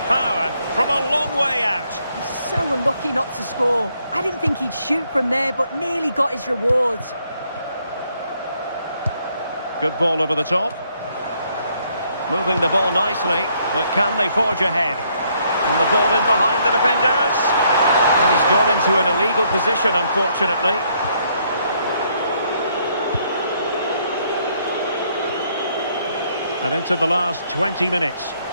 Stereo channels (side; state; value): both; inverted; correlation -0.70